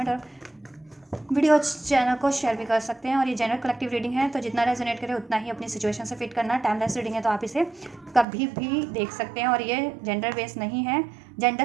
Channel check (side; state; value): left; drops out; at 8.2 s